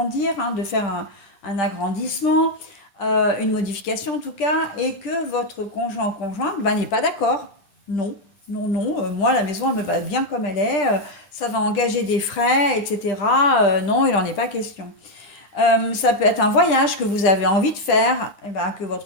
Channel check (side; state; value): right; late; 10 ms